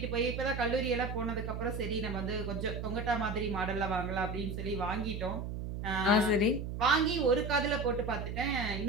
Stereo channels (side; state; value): right; noise; hum, 5 dB below the sound